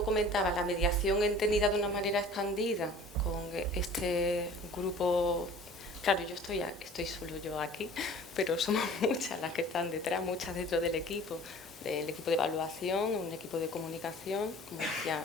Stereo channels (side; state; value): both; normal; correlation 0.46